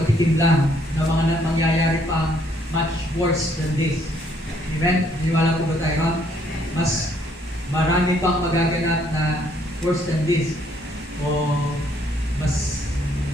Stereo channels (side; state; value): both; normal; correlation 0.67